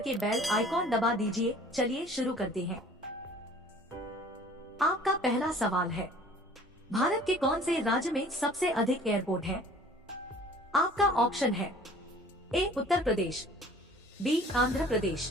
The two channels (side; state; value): both; normal; correlation 0.50